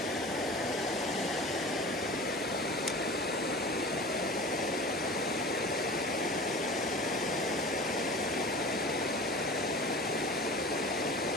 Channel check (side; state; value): both; normal; correlation 0.37